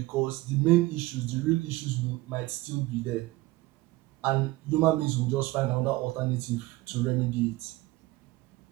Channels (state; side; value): quieter; left; 19.3 dB